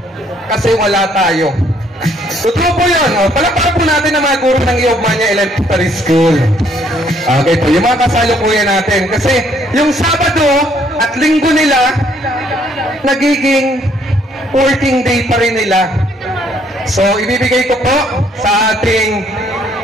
Kasi wala tayo. Totoo po yun. Palakpakan po natin ang mga guro ng Iobmania Elementary School. Okay po, yung mga kasalukuyan natin. Kasi yung Sabado at Linggo nila, nagiging working day pa rin nila. So, ibibigay ko po sa ating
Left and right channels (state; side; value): normal; both; correlation 0.66